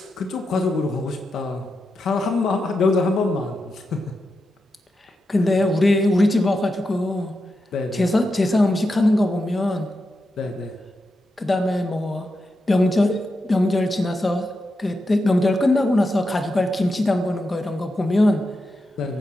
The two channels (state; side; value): normal; both; correlation 0.88